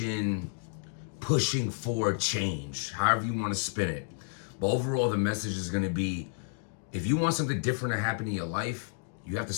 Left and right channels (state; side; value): silent; right; 57 dB below the other